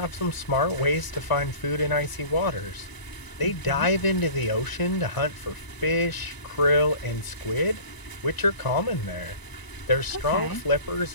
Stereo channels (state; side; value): late; right; 1.0 ms